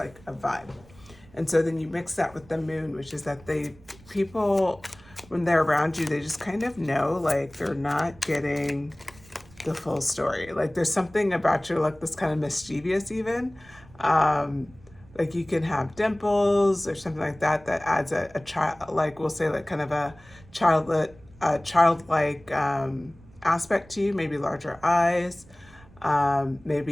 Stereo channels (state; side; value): noise; right; rumble, 24 dB below the sound